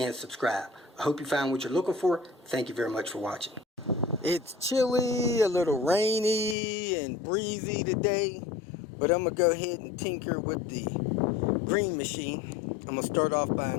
subscribe. I hope you found what you're looking for. Thank you very much for watching. It's chilly, a little rainy and breezy today, but I'm going to go ahead and tinker with the green machine. I'm going to start off by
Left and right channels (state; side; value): drops out; right; at 6.6 s